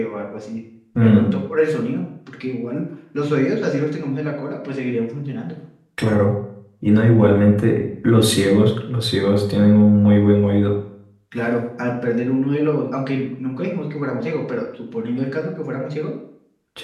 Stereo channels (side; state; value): both; identical; correlation 1.00